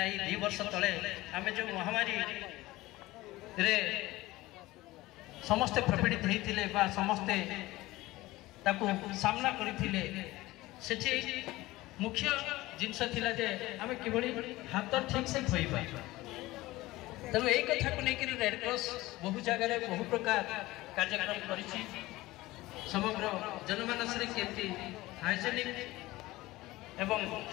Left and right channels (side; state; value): right; quieter; 18.6 dB